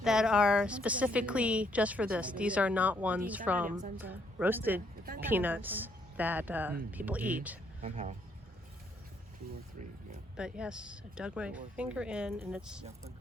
that are specifically just for this. These are not ones from roasted peanuts that people eat. Somehow. 2 or 3, yeah. But yes, I dug my finger in and it's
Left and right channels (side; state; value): both; normal; correlation 0.71